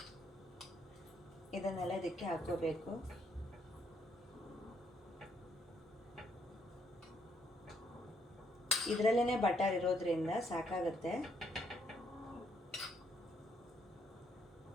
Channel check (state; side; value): normal; both; correlation 0.71